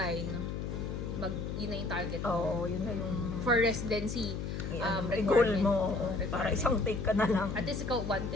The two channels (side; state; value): left; noise; hum, 4 dB below the sound